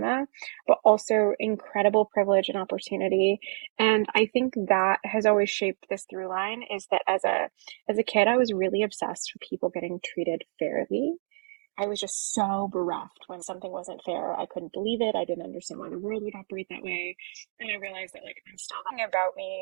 but also incredible privilege and opportunity. And I think that has always shaped this through line is that as a kid, I was really obsessed with people getting treated fairly. I was just so bereft when something wasn't fair. I couldn't believe it. I didn't understand why the world would operate that way. And I realized that like I'm still thing about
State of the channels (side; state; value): left; silent; 56 dB below the other